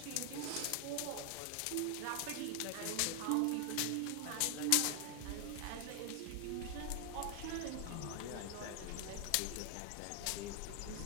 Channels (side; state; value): both; different; correlation 0.00